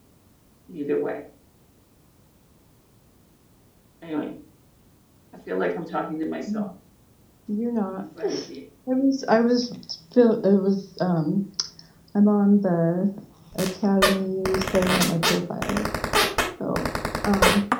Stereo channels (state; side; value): identical; both; correlation 1.00